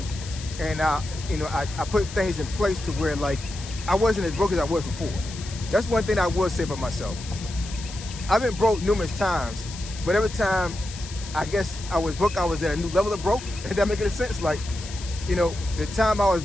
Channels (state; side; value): noise; left; hiss, 13 dB below the sound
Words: and I put things in place to where like I wasn't as broke as I was before. That's one thing I will say about myself. I've been broke numerous times, but every time I guess I was broke, I was at a new level of broke. If that make any sense? Like, the time I was